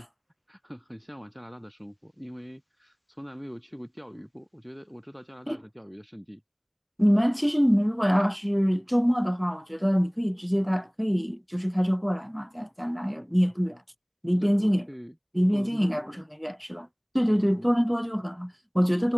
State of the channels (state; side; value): identical; both; correlation 1.00